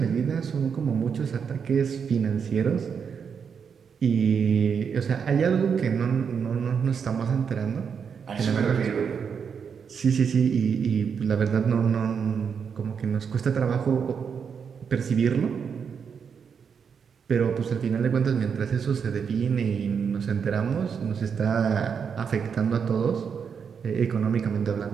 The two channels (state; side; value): quieter; left; 6.7 dB